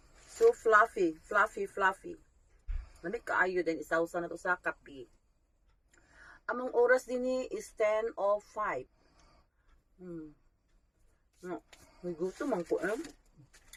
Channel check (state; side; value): identical; both; correlation 1.00